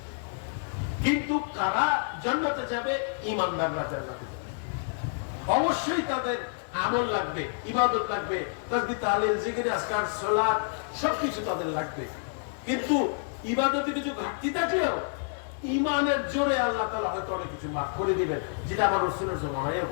কিন্তু কারা জান্নাতে যাবে? ঈমানদাররা জান্নাতে যাবে। অবশ্যই তাদের আমল লাগবে, ইবাদত লাগবে, তাসবিহ তাহলিল জিকির আজকার সালাত সবকিছু তাদের লাগবে। কিন্তু ইবাদতে কিছু ঘাটতি থাকলেও ঈমানের জোরে আল্লাহ তাআলা হয়তো অনেক কিছু মাফ করে দিবেন, যেটা আমার রাসূলের জামানায়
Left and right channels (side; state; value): right; silent; digital silence